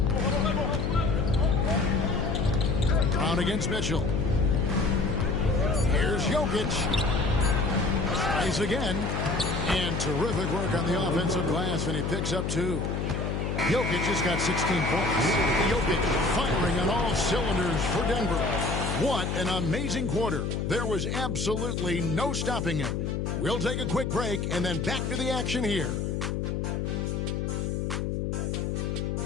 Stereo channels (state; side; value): noise; left; hum, 1 dB below the sound